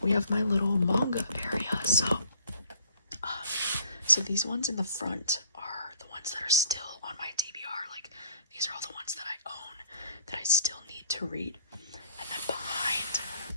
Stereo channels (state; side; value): inverted; both; correlation -0.57